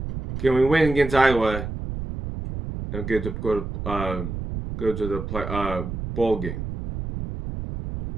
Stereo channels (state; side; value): noise; right; rumble, 6 dB below the sound